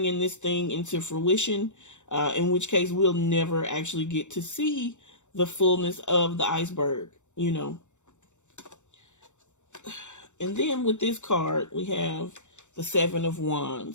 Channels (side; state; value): right; late; 0.84 ms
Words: this thing into fruition? In which case we'll never actually get to see the fullness of the iceberg, And then with this card, we have the Seven of